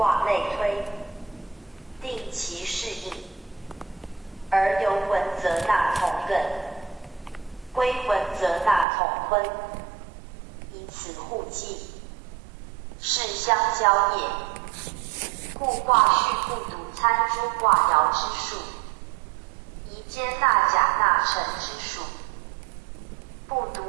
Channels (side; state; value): left; drops out; at 8.8 s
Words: 类推，定其适应。而游文则纳同艮，归文则纳同坤，以此互济，是相交也。故卦序不独参诸卦爻之数，宜兼纳甲纳辰之数，不